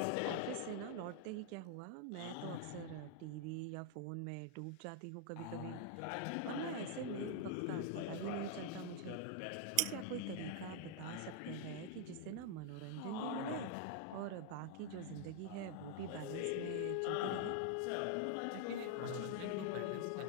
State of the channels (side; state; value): both; different; correlation 0.00